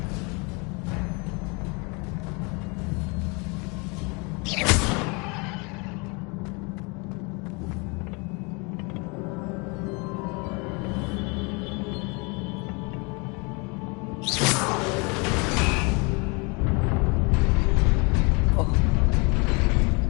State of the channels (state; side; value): quieter; right; 30.6 dB